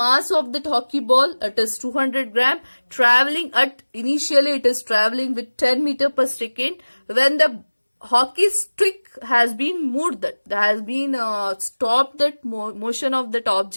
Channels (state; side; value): inverted; both; correlation -1.00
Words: of that hockey ball, it is 200 gram, traveling at, initially it is traveling with 10 meter per second. When the hockey stick has been moved, that has been stopped that motion of that